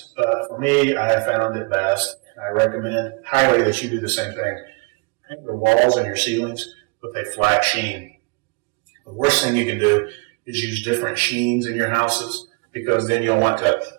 But for me, I have found it best. I recommend highly that you do the same thing. Paint your walls and your ceilings with a flat sheen. The worst thing you can do is use different sheens in your houses, because then you'll want to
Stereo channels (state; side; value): quieter; left; 32.7 dB